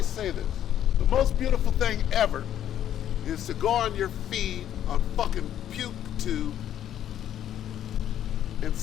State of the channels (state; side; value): quieter; right; 10.8 dB